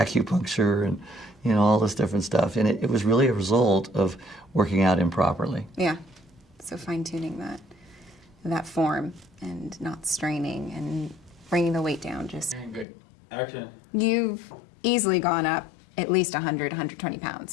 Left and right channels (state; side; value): drops out; right; at 12.9 s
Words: and, you know, all this different stuff. And it was really a result of working out improperly. Yeah. So fine-tuning that form and not straining and bringing the weight down. Just Good. Action. You've easily gone up at least 100, 120 pounds